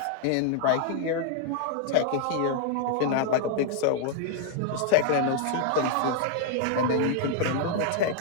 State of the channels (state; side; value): different; both; correlation 0.00